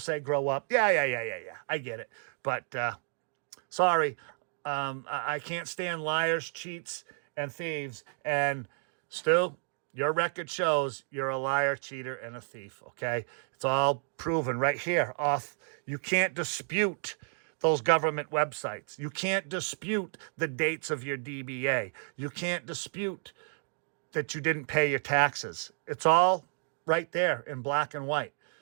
grow up. Yeah. I get it. But sorry, I can't stand liars, cheats, and thieves. And Stu, your record shows you're a liar, cheater, and a thief, okay? It's all proven right here. You can't dispute those government websites. You can't dispute the dates of your DBA. You can't dispute that you didn't pay your taxes. It's all right there in black and white.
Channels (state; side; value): silent; left; 56 dB below the other